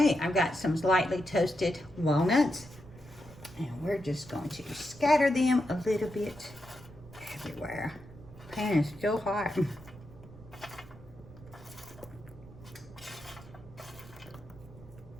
I've got some lightly toasted walnuts, and we're just going to scatter them a little bit everywhere. Pan is still hot.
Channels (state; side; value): noise; right; rumble, 19 dB below the sound